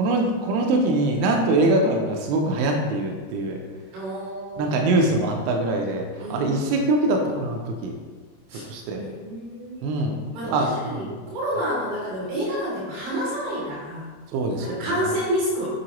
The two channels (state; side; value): late; left; 27 ms